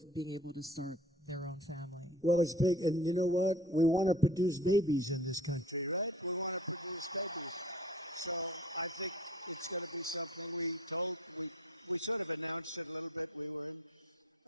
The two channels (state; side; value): normal; both; correlation 0.46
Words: being able to start their own family. Well, it's big, and you know what? We want to produce babies in this country.